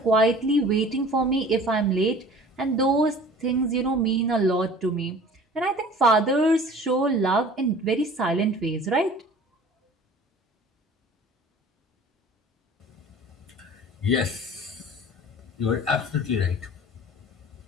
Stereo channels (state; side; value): normal; both; correlation 0.45